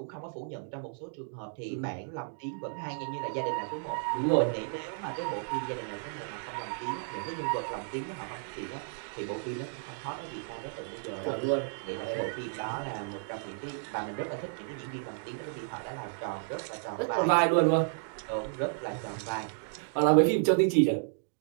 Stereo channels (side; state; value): left; silent; digital silence